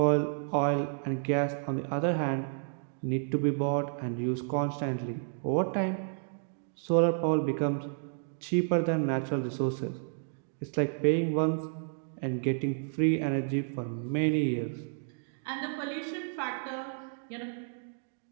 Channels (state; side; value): silent; left; digital silence